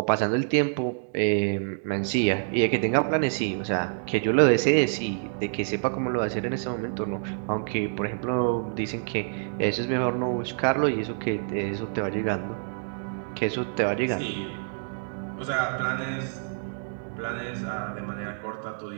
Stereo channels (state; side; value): silent; left; digital silence